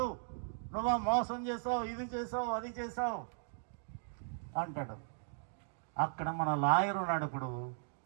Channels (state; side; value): silent; left; digital silence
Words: నువ్వు మోసం చేసావు, ఇది చేసావు, అది చేసావు అంటాడు. అక్కడ మన లాయర్ ఉన్నాడు. ఇప్పుడు